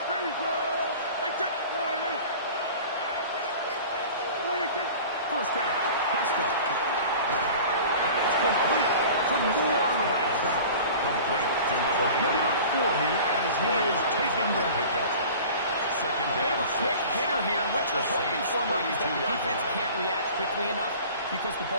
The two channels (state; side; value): inverted; both; correlation -0.41